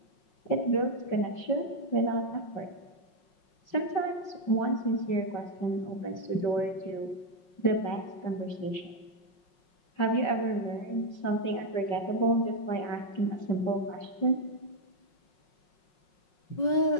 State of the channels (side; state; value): right; late; 5.5 ms